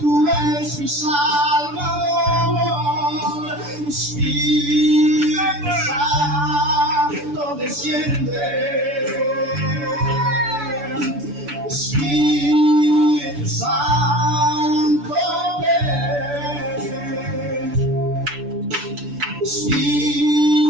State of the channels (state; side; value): late; left; 6.9 ms